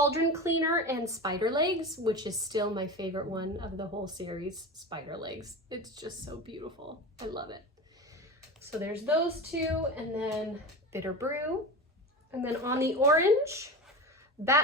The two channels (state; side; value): normal; both; correlation 0.27